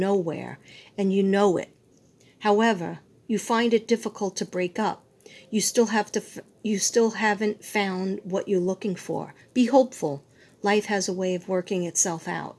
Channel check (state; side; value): identical; both; correlation 1.00